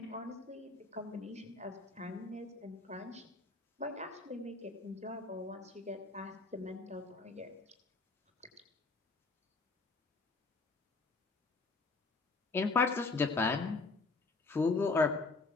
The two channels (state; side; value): quieter; right; 3.8 dB